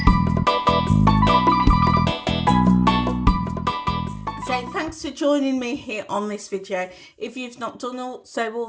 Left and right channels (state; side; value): identical; both; correlation 1.00